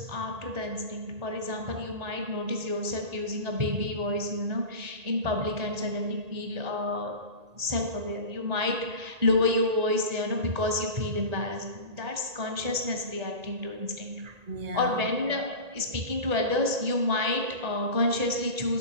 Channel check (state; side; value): late; left; 1.8 ms